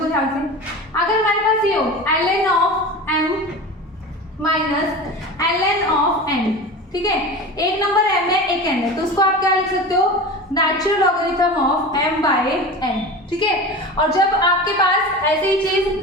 ध्यान से, अगर हमारे पास ये हो ln of m minus ln of n, ठीक है, एक नंबर m है, एक n है, तो उसको आप क्या लिख सकते हो, नेचुरल लॉगरिथम ऑफ m/n। ठीक है, और जब आपके पास ऐसी ही चीज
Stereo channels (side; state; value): both; normal; correlation 0.31